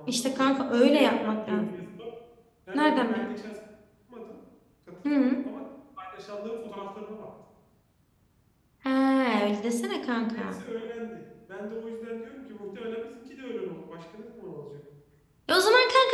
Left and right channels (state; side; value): identical; both; correlation 1.00